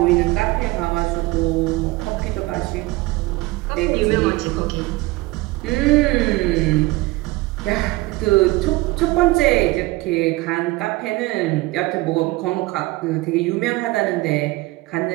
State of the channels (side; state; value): left; quieter; 21.0 dB